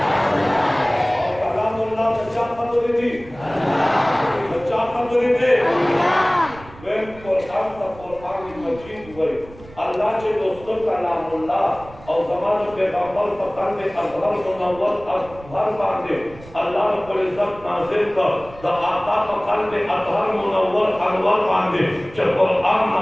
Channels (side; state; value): right; noise; rumble, 20 dB below the sound